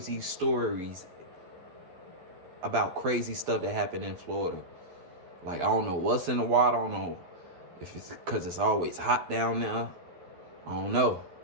stories about crazy stuff that happened in Florida. Like, I don't know what's in the water. I don't know if it's because it's always hot down there. I don't know.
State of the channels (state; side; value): late; left; 12 ms